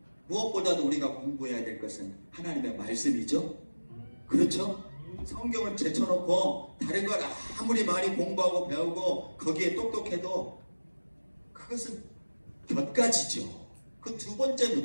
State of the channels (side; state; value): both; inverted; correlation -1.00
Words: 무엇보다도 우리가 공부해야 될 것은 하나님의 말씀이죠. 그렇죠? 성경을 제쳐놓고 다른 걸 아무리 많이 공부하고 배우고 거기에 똑똑해도 그것은 곁가지죠. 그 두 번째